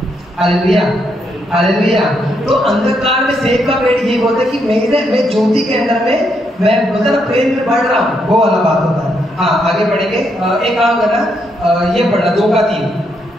Hallelujah, hallelujah. तो अंधकार में सेब का पेड़ ये बोलता है कि मैं ज्योति के अंदर में मैं मतलब प्रेम में बढ़ रहा हूँ, वो वाला बात होता है। हाँ, आगे बढ़ेंगे। एक काम करना, ये पढ़ना 2 का 3।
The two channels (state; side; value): normal; both; correlation 0.77